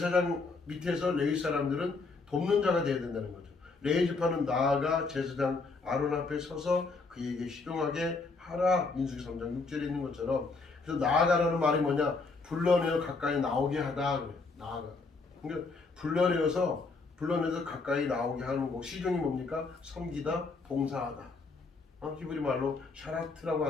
밑에서 레위 사람들은 돕는 자가 되어야 된다는 거죠. 레위 지파는 나아가 제사장 아론 앞에 서서 그에게 시종하게 하라. 민수기 3장 6절에 있는 것처럼. 그래서 나아가라는 말이 뭐냐? 불러내어 가까이 나오게 하다. 그래요. 나아가. 그러니까 불러내서 가까이 나오게 하는 거. 시종이 뭡니까? 섬기다, 봉사하다. 히브리 말로 샤라트라고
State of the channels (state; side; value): quieter; right; 4.0 dB